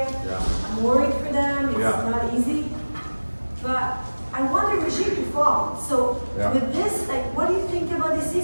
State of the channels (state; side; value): inverted; both; correlation -1.00